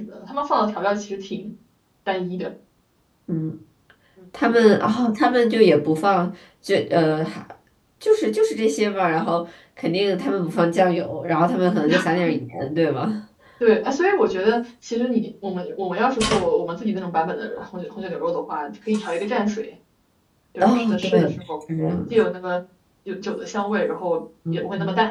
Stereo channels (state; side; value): identical; both; correlation 1.00